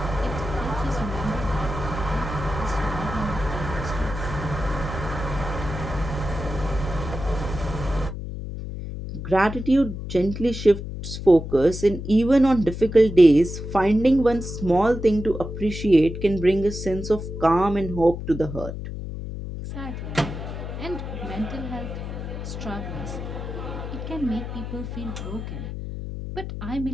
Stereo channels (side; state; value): left; noise; hum, 7 dB below the sound